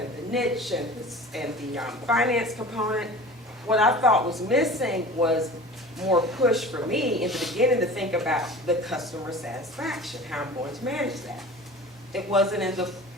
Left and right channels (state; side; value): normal; both; correlation 0.39